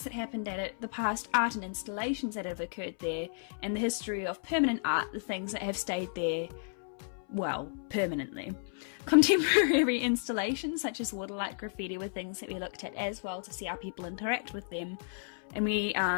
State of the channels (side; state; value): right; silent; 56 dB below the other